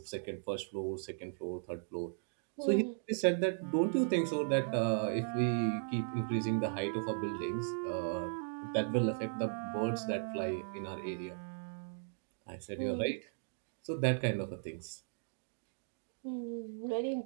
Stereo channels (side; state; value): left; silent; digital silence